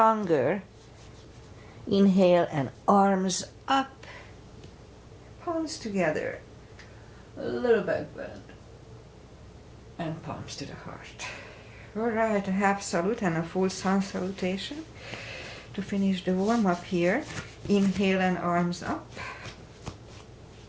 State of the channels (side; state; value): both; identical; correlation 1.00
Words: Inhale and arms up. Palms together. A little back bend. And palms to the heart. Alright, a half salute and a full sun salutation. To finish the warm up here. Inhale and arms up.